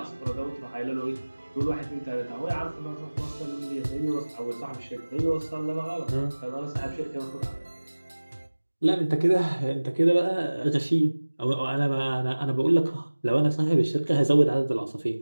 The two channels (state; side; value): inverted; both; correlation -1.00